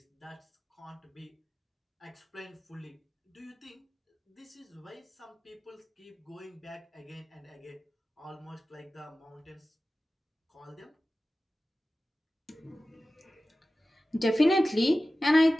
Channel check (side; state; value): both; normal; correlation 0.96